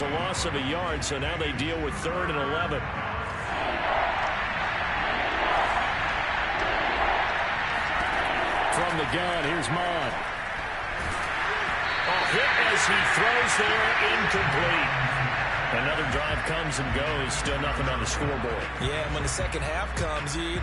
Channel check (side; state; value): both; identical; correlation 1.00